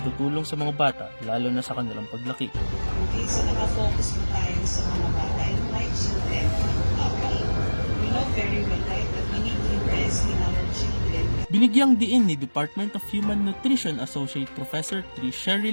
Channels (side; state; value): both; inverted; correlation -1.00